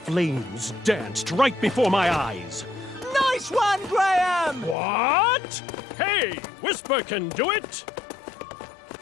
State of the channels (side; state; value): right; drops out; at 4.8 s